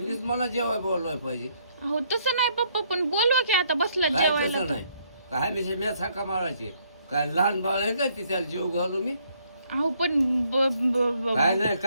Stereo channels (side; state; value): both; inverted; correlation -0.69